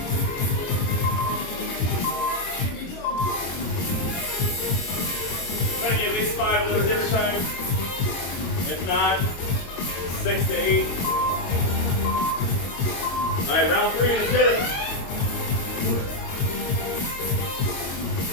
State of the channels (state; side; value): late; right; 23 ms